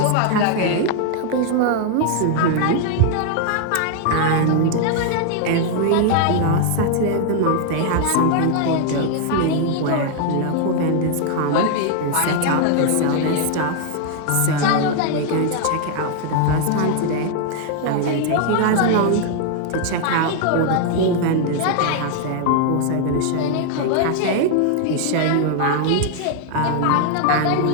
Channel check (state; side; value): different; both; correlation 0.00